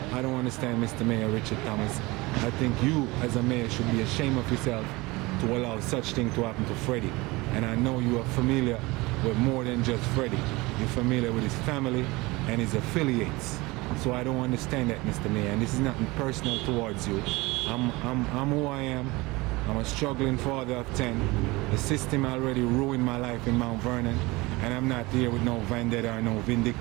don't understand, Mr. Mayor Richard Thomas. I think you as a mayor should be ashamed of yourself to allow such thing to happen to Freddy. And I know you are familiar with more than just Freddy. You're familiar with his family and his affiliates. So I don't understand that, Mr. Mayor. And this is nothing personal towards you. I'm who I am. I'm a struggling father of 10. The system already ruined my life in Mount Vernon, and I'm not here with no vendetta or no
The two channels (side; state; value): left; quieter; 22.6 dB